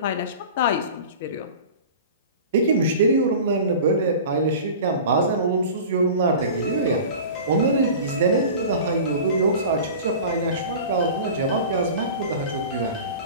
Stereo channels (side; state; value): both; inverted; correlation -0.37